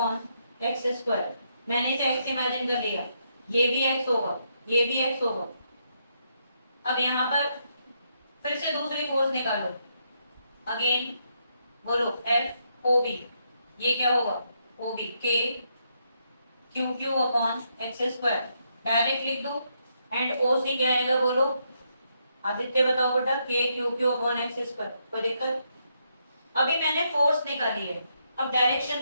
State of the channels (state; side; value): inverted; both; correlation -0.77